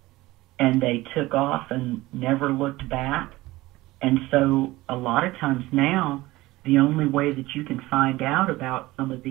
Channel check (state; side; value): quieter; left; 18.8 dB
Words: and they took off and never looked back. And so a lot of times now, the only way that you can find out about some of